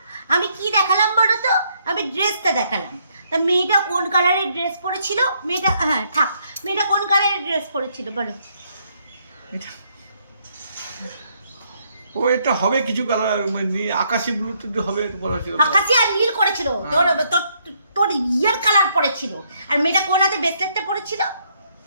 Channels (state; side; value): inverted; both; correlation -0.71